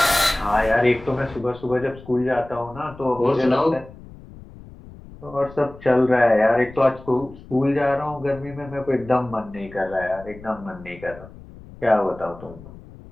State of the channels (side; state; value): left; noise; rumble, 19 dB below the sound